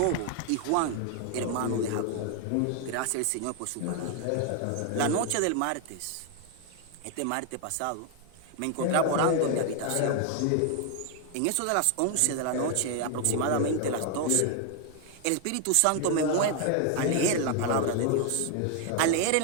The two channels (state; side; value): different; both; correlation 0.00